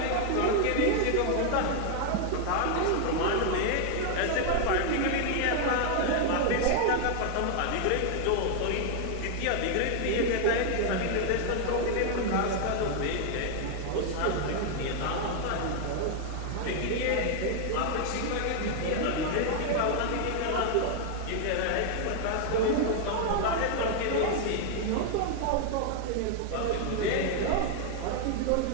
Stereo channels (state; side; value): different; both; correlation 0.00